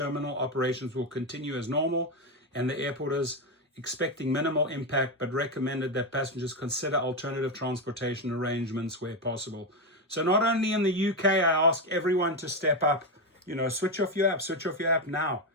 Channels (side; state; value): both; normal; correlation 0.10